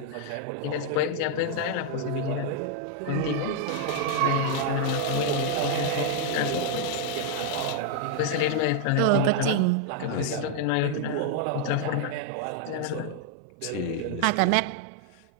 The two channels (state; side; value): different; both; correlation 0.00